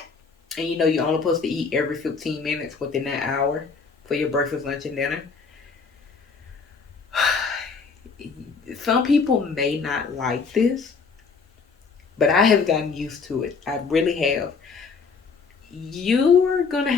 and you're only supposed to eat every 15 minutes within that hour for your breakfast, lunch, and dinner. Some people may not like this, but I have gotten used to it. I really have. You're going to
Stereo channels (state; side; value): quieter; right; 5.0 dB